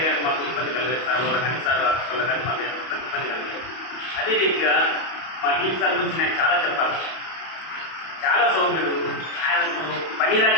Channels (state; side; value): late; right; 31 ms